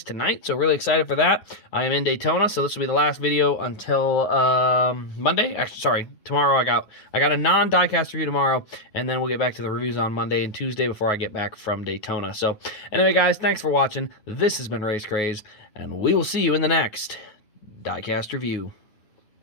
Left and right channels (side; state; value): right; late; 9.9 ms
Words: tonight, so really excited for that. I am in Daytona, so this will be the last video until Monday. Actually, sorry, tomorrow I got a non-Diecast review tomorrow, and then we'll get back to the reviews on Monday and Tuesday before I get back from Daytona. So anyway, guys, thanks for watching. This has been Race Craze, and we will see you in the next Diecast review.